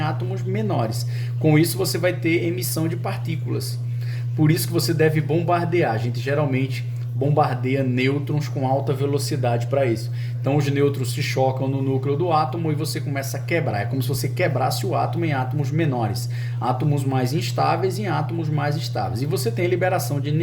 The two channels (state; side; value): identical; both; correlation 1.00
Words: menores. Com isso você vai ter emissão de partículas. Por isso que você deve bombardear. A gente geralmente bombardeia nêutrons com alta velocidade para isso. Então os nêutrons se chocam no núcleo do átomo e você começa a quebrar. É como se você quebrasse o átomo em átomos menores, átomos mais instáveis em átomos mais estáveis. E você tem liberação de